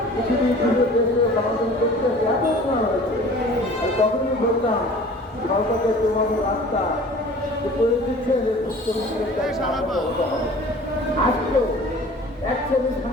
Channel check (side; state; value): both; normal; correlation 0.45